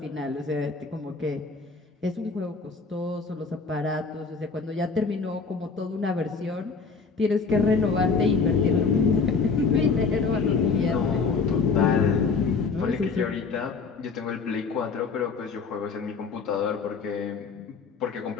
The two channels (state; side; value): quieter; right; 4.8 dB